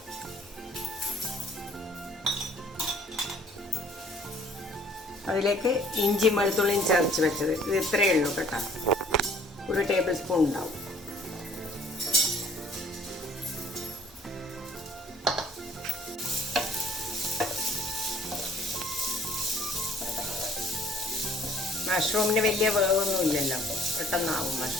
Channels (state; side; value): normal; both; correlation 0.56